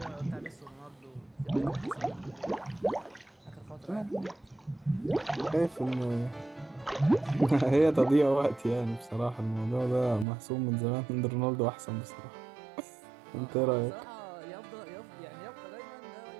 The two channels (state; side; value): drops out; left; at 10.2 s